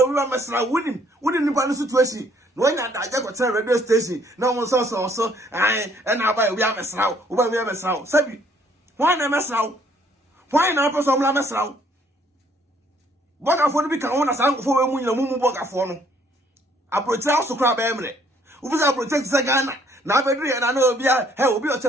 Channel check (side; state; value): both; normal; correlation 0.64